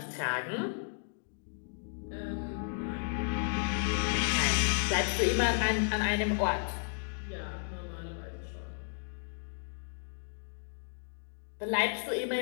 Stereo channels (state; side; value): silent; right; digital silence